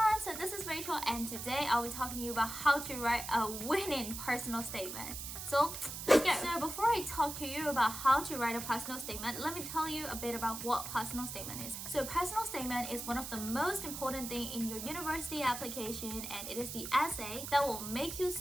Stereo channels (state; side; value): noise; right; hiss, 7 dB below the sound